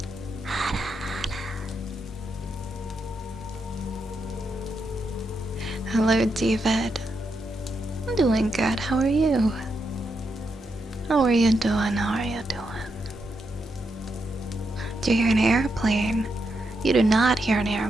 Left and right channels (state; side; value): normal; both; correlation 0.83